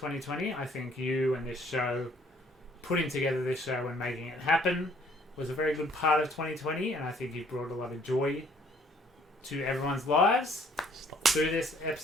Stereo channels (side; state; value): both; normal; correlation 0.61